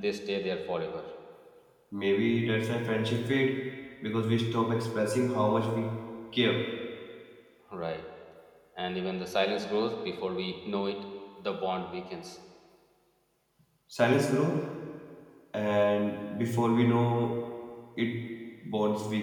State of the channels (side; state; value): both; identical; correlation 1.00